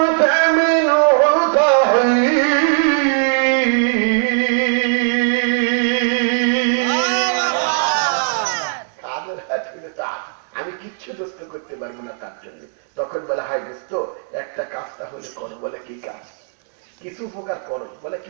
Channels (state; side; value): silent; left; 66 dB below the other